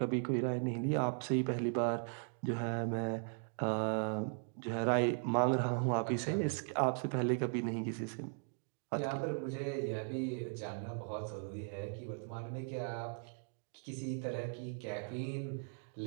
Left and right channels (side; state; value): left; silent; 52 dB below the other